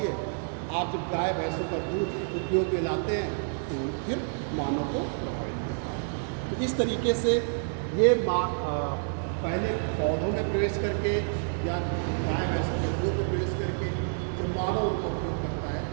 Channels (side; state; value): left; silent; 59 dB below the other